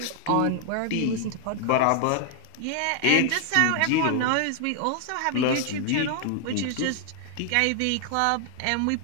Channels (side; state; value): both; different; correlation 0.00